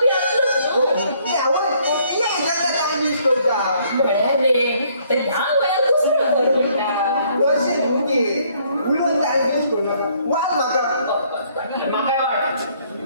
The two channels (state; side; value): inverted; both; correlation -0.65